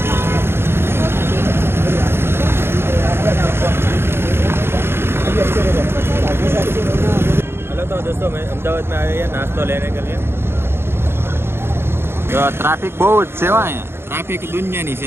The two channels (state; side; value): late; left; 0.11 ms